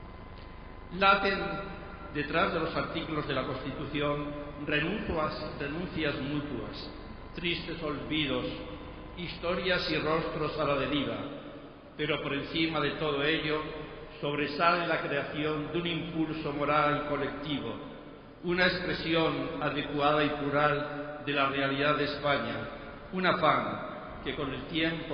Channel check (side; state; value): both; identical; correlation 1.00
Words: Laten detrás de los artículos de la Constitución renuncias mutuas, tristes olvidos, historias y rostros a la deriva, pero por encima de todo ello sobresale la creación de un impulso moral colectivo, una expresión adecuada y plural de la realidad de España, un afán que con el